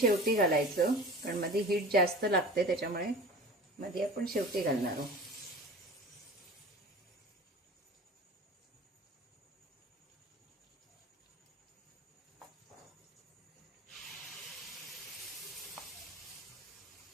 घालायचं, कारण मध्ये हीट जास्त लागते, त्याच्यामुळे मध्ये आपण शेवटी घालणार आहोत.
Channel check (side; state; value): both; normal; correlation 0.38